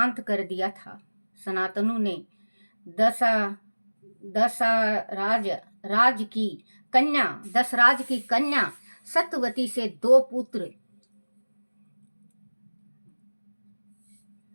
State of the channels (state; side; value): inverted; both; correlation -1.00